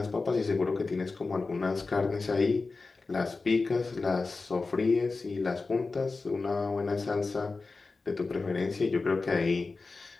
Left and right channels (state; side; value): quieter; right; 3.9 dB